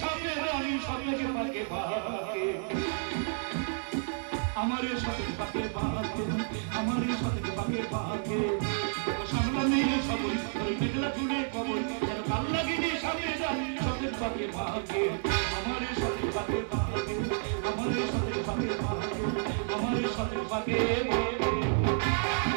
সাপে রানী সাপেকে পাকে পাকে, আমারে সাপে পাকে পাকে, আমারে সাপে পাকে পাকে। সামনে সাগরী তোর মেঘলা চুলে কবরী, যেন কাল লাগেনি সাপে রানী সাপেকে পাকে পাকে, আমারে সাপে পাকে পাকে, আমারে সাপে পাকে পাকে, আমারে সাপে পাকে পাকে।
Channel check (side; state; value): left; silent; digital silence